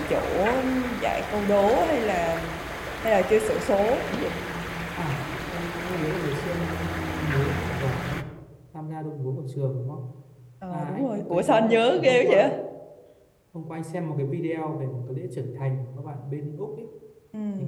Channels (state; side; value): identical; both; correlation 1.00